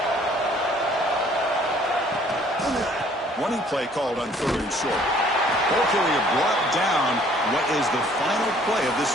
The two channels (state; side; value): normal; both; correlation 0.58